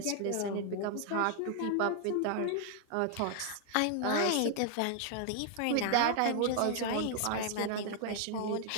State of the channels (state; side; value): different; both; correlation 0.00